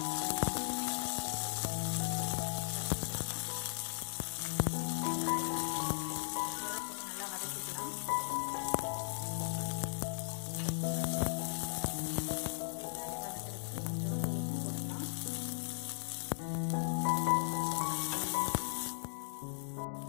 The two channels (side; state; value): right; silent; digital silence